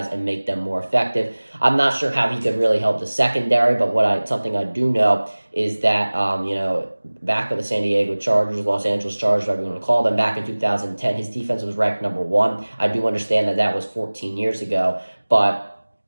and make them more effective. I'm not sure how he could really help the secondary, but something I do know is that, back with the San Diego Chargers, Los Angeles Chargers, whatever you want to call them, back in 2010, his defense was ranked number 1. I do understand that was 14 years ago, but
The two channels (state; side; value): inverted; both; correlation -1.00